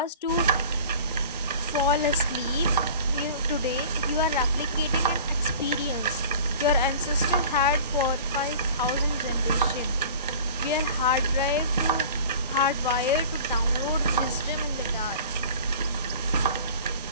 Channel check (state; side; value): inverted; both; correlation -0.42